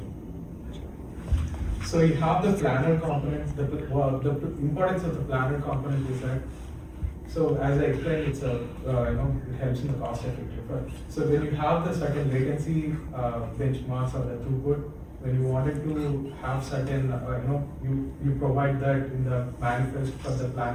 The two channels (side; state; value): both; identical; correlation 1.00